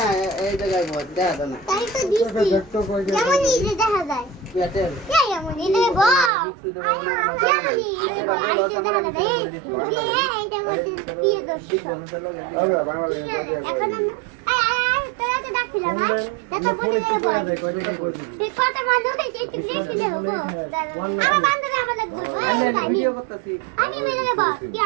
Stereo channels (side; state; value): left; drops out; at 6.3 s